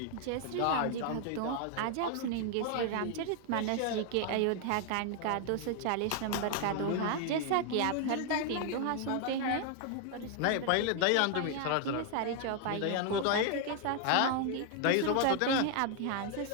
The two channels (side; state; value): both; different; correlation 0.00